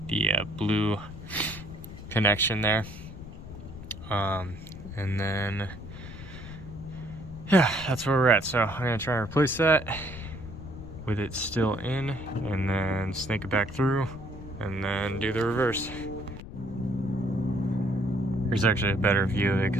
the blue connection there. And then, yeah, that's where we're at. So I'm gonna try and replace that with it still in, and then snake it back through, and then do the reverse. There's actually a better view of it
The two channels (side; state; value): left; noise; rumble, 13 dB below the sound